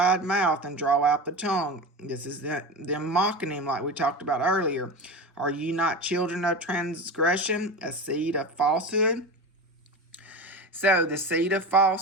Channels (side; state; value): both; normal; correlation 0.26